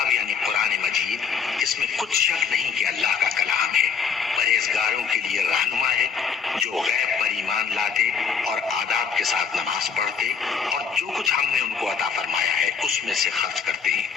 یعنی قرآن مجید، اس میں کچھ شک نہیں کہ اللہ کا کلام ہے، پرہیزگاروں کے لیے رہنما ہے، جو غیب پر ایمان لاتے اور آداب کے ساتھ نماز پڑھتے اور جو کچھ ہم نے ان کو عطا فرمایا ہے اس میں سے خرچ کرتے ہیں،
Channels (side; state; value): right; quieter; 6.4 dB